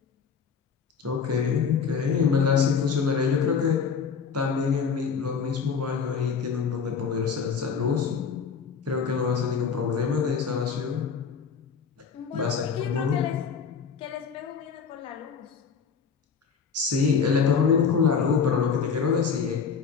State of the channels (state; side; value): quieter; right; 6.1 dB